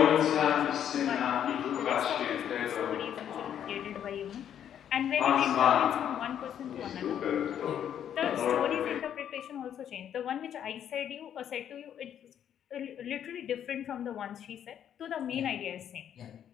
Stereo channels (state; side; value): quieter; right; 9.6 dB